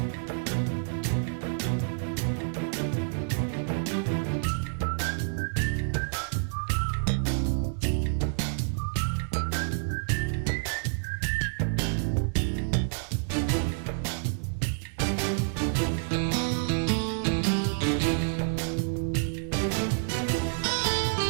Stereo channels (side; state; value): left; silent; digital silence